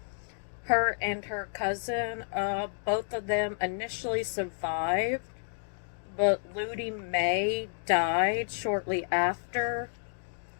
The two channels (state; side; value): silent; right; digital silence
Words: her and her cousin. Both of them initially survived, but Ludi May died shortly after.